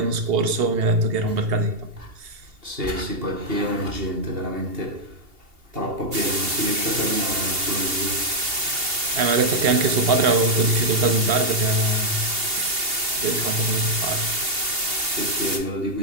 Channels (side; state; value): left; late; 2.8 ms